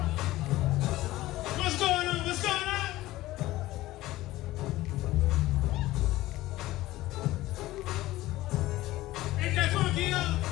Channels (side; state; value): right; quieter; 17.0 dB